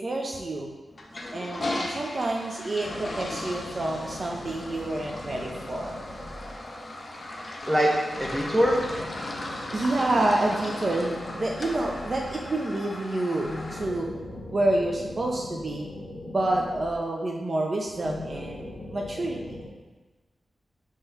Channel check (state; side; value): normal; both; correlation 0.91